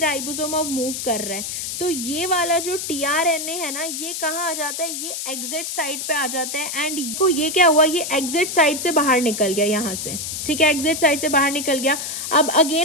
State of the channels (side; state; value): left; noise; hiss, 5 dB below the sound